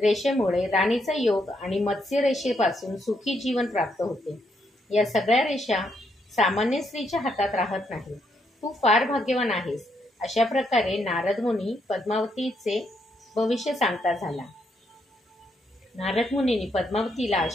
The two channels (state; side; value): normal; both; correlation 0.76